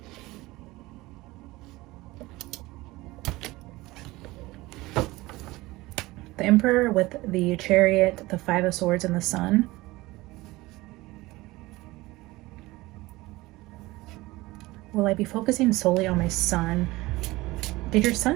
The Emperor with the Chariot, the Five of Swords, and the Sun. Will I be focusing solely on my son? Did your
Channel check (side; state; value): left; quieter; 20.1 dB